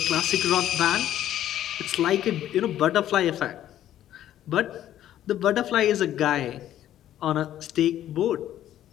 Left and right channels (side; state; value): right; quieter; 12.1 dB